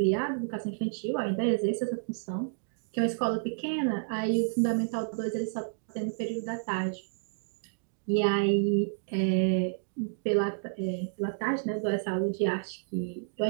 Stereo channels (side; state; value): left; silent; digital silence